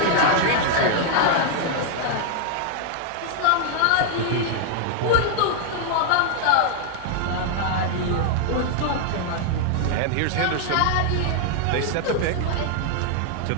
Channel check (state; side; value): different; both; correlation 0.00